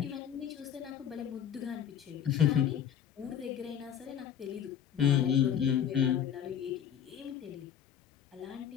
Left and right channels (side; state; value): right; quieter; 9.2 dB